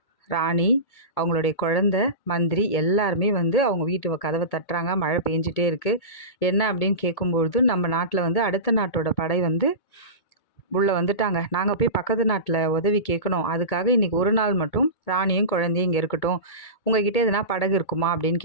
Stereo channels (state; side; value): late; right; 2.2 ms